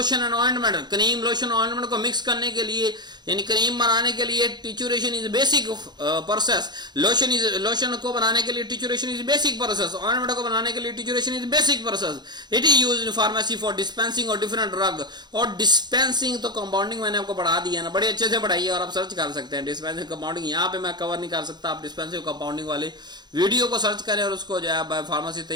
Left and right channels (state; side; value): late; left; 0.21 ms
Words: and ointment. Cream, lotion, ointment को मिक्स करने के लिए, यानी क्रीम बनाने के लिए trituration is basic process. Lotion को बनाने के लिए trituration is basic process. Ointment को बनाने के लिए trituration is basic process. It is used in pharmacy for dispensing और डिफरेंट ड्रग। और डिस्पेंसिंग तो कंपाउंडिंग मैंने आपको पढ़ा दिया ना, बड़े अच्छे से पढ़ाई है और आप सर्च कर सकते हैं। डिस्पेंसिंग कंपाउंडिंग यहाँ पे मैं कवर नहीं कर सकता, आप डिस्पेंसिंग कंपाउंडिंग वाले वीडियो को सर्च करें और उसको जो है फार्मेसी